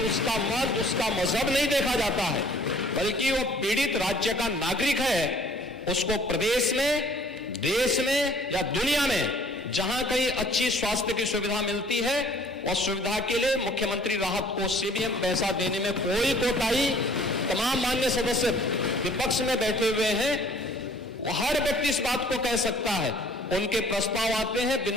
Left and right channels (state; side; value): normal; both; correlation 0.54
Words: उसका मत, उसका मजहब नहीं देखा जाता है, बल्कि वो पीड़ित राज्य का नागरिक है। उसको प्रदेश में, देश में या दुनिया में जहां कहीं अच्छी स्वास्थ्य की सुविधा मिलती है, और सुविधा के लिए मुख्यमंत्री राहत कोष से भी हम पैसा देने में कोई कोताही, तमाम मान्य सदस्य विपक्ष में बैठे हुए हैं, हर व्यक्ति इस बात को कह सकता है। उनके प्रस्ताव आते हैं